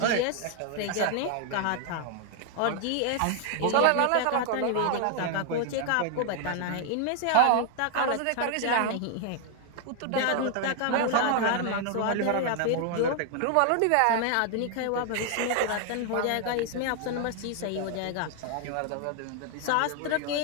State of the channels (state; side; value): different; both; correlation 0.00